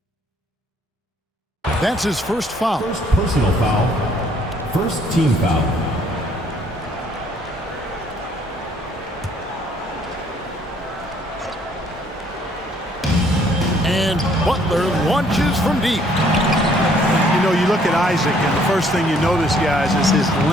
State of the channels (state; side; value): normal; both; correlation 0.63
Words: That's his first foul. First personal foul. First team foul. And Butler launches from deep. You know, you look at Isaac, and the first thing you notice, guys, is his